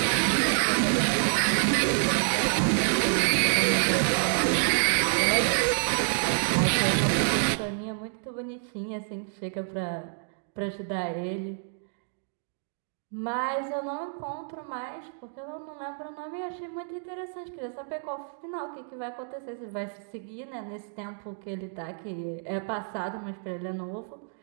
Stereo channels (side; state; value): left; silent; digital silence